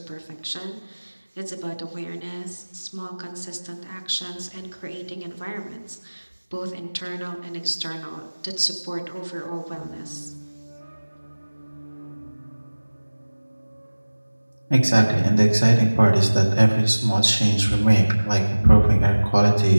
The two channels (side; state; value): both; inverted; correlation -1.00